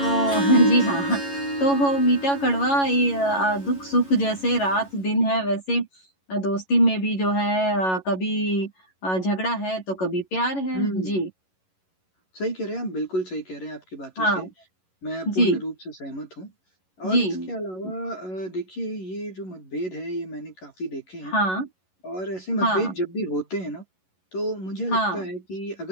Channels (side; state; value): right; late; 11 ms